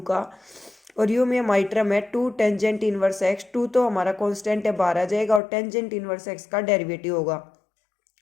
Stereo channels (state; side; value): drops out; right; at 5.4 s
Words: का, और u में हमारी टर्म है 2 टेंजेंट इनवर्स x, 2 तो हमारा कांस्टेंट है बाहर आ जाएगा और टेंजेंट इनवर्स x का डेरिवेटिव होगा